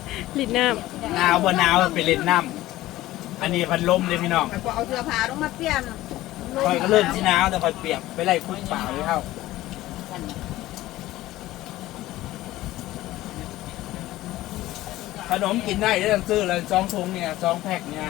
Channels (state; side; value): quieter; right; 16.2 dB